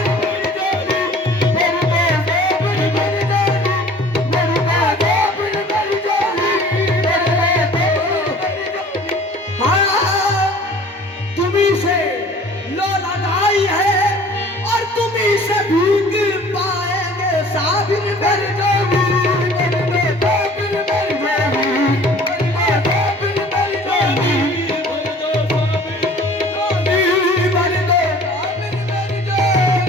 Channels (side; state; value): both; normal; correlation 0.49